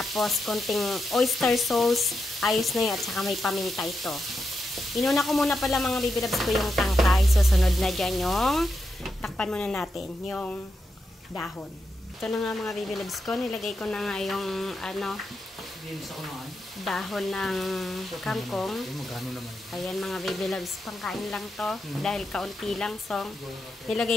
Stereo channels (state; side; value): normal; both; correlation 0.86